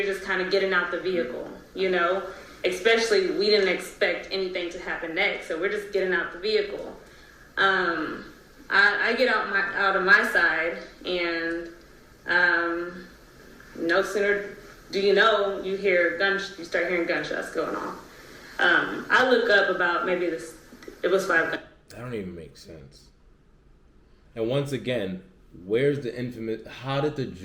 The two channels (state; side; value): identical; both; correlation 1.00